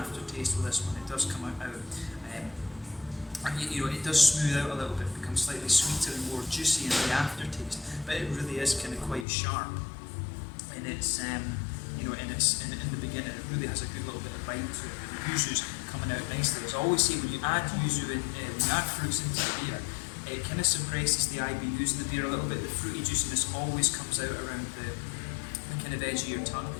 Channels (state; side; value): drops out; right; at 9.2 s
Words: with this one. It does come out, and you know, it does smooth out a little bit, becomes slightly sweeter and more juicy in the aftertaste. But it really is kind of quite sharp. And it's, you know, in the beginning, it really has a good little bit of bite to it. The yuzu's coming out nicely. As I always say, when you add yuzu in, when you add fruits into the beer, it kind of suppresses the IBUs in the beer a little bit. The fruity juiciness always comes out around the kind of edge of your tongue.